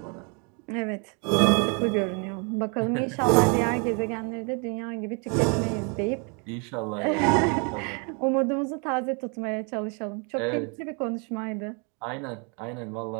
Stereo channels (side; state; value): left; quieter; 35.0 dB